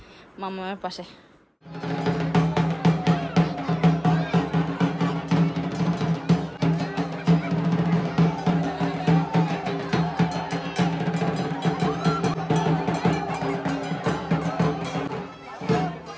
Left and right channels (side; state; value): both; identical; correlation 1.00